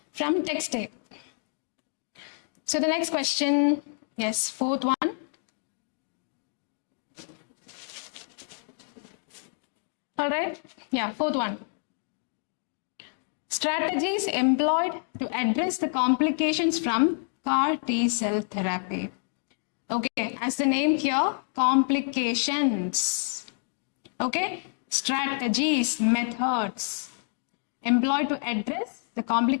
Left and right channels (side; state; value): right; silent; 59 dB below the other